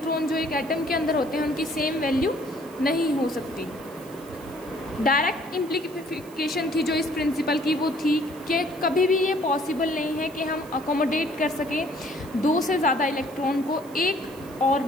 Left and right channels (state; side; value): noise; right; hiss, 23 dB below the sound